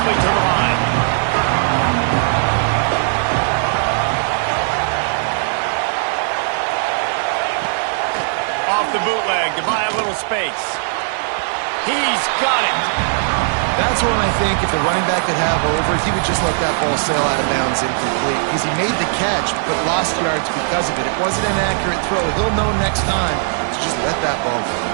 to the line. Off the bootleg to buy a little space. He's got it. That's one I think if the running back could have over, he would just let that ball sail out of bounds incomplete because he made the catch but lost yards because of it. It wasn't an accurate throw. He'll know next time to just let that ball go.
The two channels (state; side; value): silent; left; 67 dB below the other